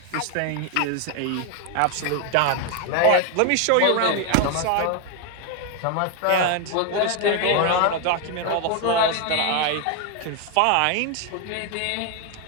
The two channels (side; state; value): both; different; correlation 0.01